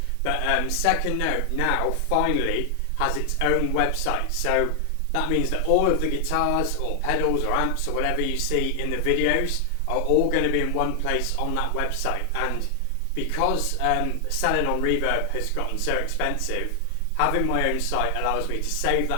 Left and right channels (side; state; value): both; different; correlation 0.00